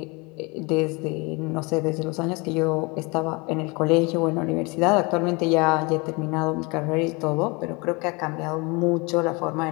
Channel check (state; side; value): quieter; right; 27.5 dB